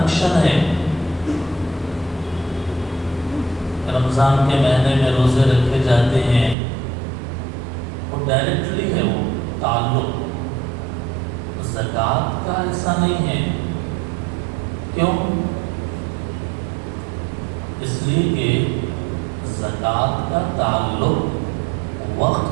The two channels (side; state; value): left; drops out; at 6.6 s